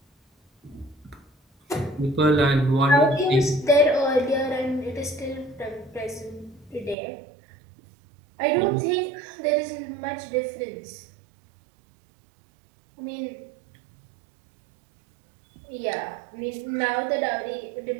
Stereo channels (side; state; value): left; drops out; at 7.0 s